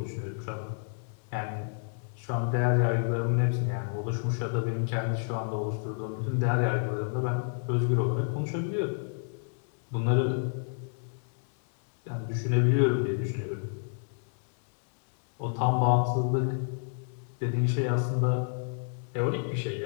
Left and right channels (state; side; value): silent; right; 58 dB below the other